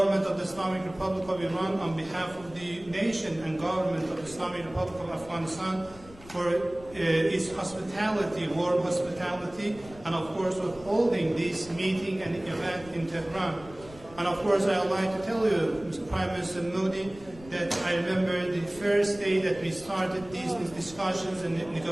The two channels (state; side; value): noise; left; rumble, 20 dB below the sound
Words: of the Islamic Republic of Iran on behalf of the nation and government of the Islamic Republic of Afghanistan for its hospitality, warm hospitality, and of course for holding this meeting and event in Tehran. And of course I would like to tell you, Mr. Prime Minister Modi, that I remember the first day that we started these discussions and